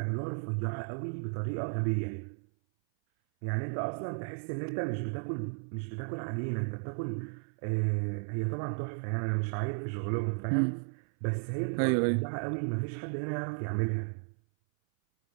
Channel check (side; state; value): left; silent; 55 dB below the other